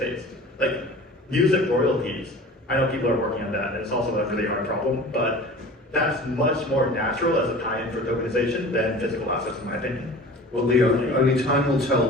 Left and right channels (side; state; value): both; normal; correlation 0.40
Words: Like music royalties, I know people are working on that, and it's also a really hard problem, but that's much more natural as a tie-in for tokenization than physical assets, in my opinion. Well, Leo, only time will tell